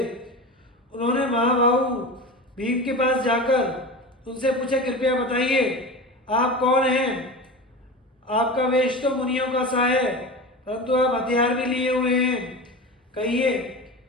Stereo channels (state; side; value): normal; both; correlation 0.29